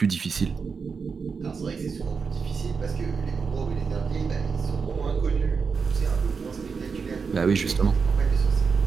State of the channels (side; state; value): left; quieter; 5.4 dB